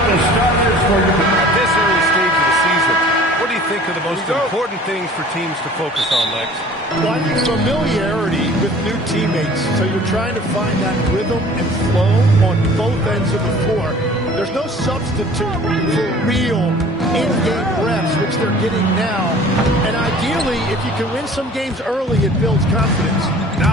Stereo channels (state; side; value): normal; both; correlation 0.48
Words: the starters for you. At this early stage of the season, what do you think are the most important things for teams to focus on, Lex? Well, I think familiarity with new teammates. So you're trying to find that rhythm and flow on both ends of the floor. There's no substitute for real in-game reps, which they're getting now. And ideally, if you can win some games early, it builds confidence.